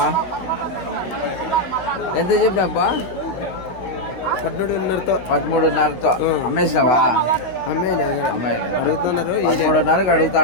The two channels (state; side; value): late; right; 16 ms